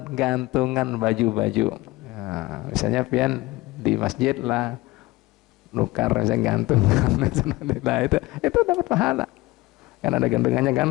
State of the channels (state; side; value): quieter; right; 20.1 dB